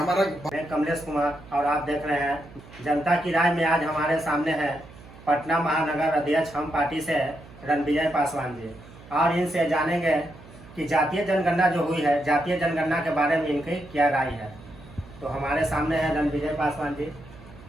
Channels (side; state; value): right; noise; hum, 20 dB below the sound